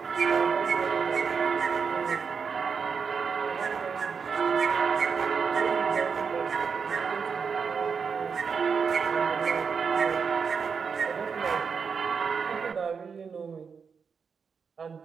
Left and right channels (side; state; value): left; quieter; 5.9 dB